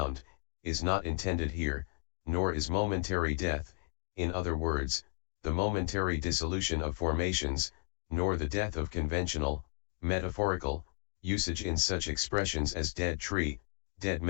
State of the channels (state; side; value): silent; right; 55 dB below the other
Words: is not intended here, nor is momentary death, in other words, the momentary dissolution of formations, nor the death of conventional, metaphorical, usage in such expressions as dead tree, dead